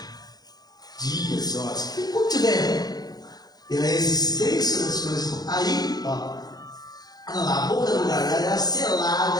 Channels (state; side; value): late; right; 0.19 ms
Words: dias, horas, enquanto tiver a existência das coisas, aí, a boca do gargalo era